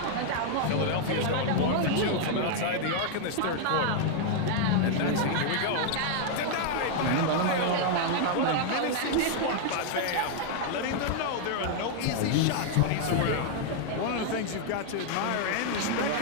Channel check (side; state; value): both; different; correlation 0.00